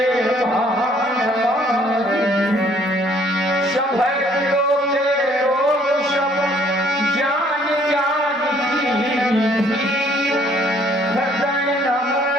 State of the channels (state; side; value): normal; both; correlation 0.62